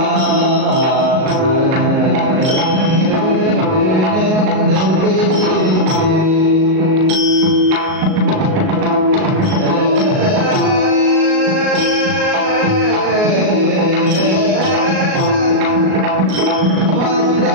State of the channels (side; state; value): left; late; 38 ms